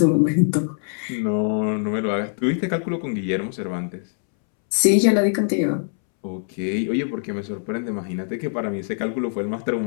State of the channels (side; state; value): right; silent; 64 dB below the other